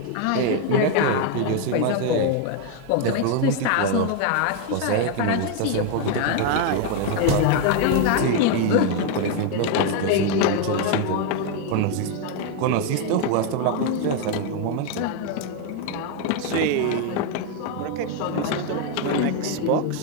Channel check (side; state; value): both; different; correlation 0.01